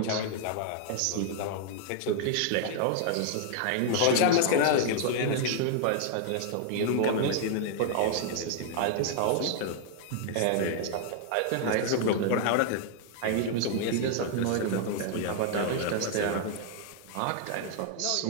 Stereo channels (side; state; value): both; different; correlation 0.00